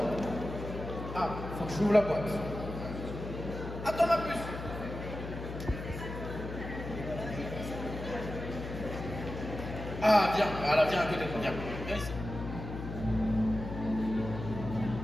Ah, faut que je ouvre la boîte. Attends ma puce. Ah, viens, voilà, viens à côté de moi, viens. Viens ici.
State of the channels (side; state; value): left; noise; hum, 8 dB below the sound